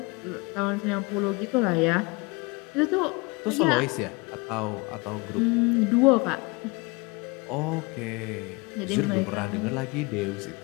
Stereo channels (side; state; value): right; quieter; 26.8 dB